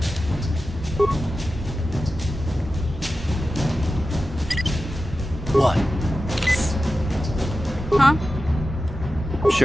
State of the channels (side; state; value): both; normal; correlation 0.93